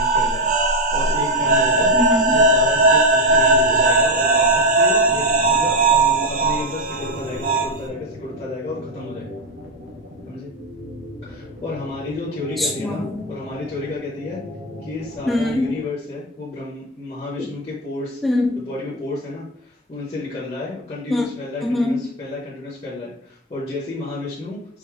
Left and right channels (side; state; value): both; normal; correlation 0.06